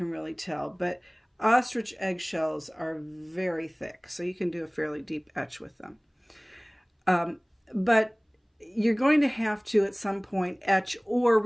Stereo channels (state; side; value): identical; both; correlation 1.00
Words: really tell, but ostrich eggshells are very thick, so you can do a fairly deep etch with them. But you're going to have to at some point etch or